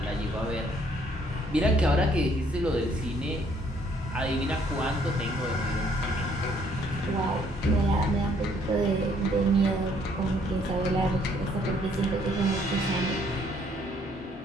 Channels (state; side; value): normal; both; correlation 0.65